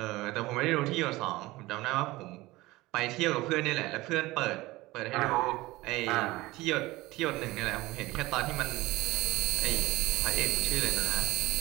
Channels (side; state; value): left; quieter; 19.6 dB